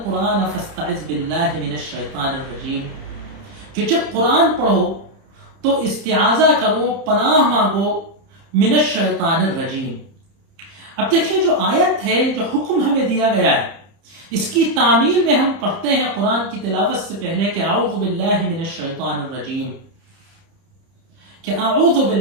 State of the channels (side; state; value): left; late; 30 ms